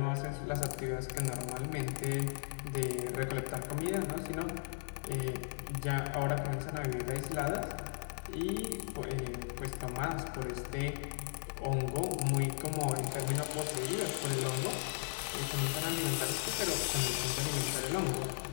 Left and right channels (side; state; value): right; silent; digital silence